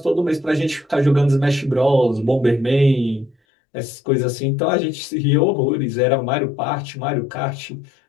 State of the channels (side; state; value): right; drops out; at 3.4 s